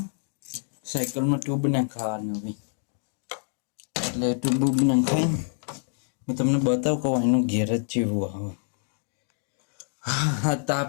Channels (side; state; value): right; silent; digital silence